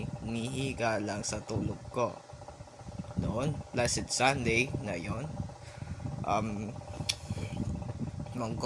nihiga lang sa tulog ko noon. Blessed Sunday na yon.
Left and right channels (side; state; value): both; identical; correlation 1.00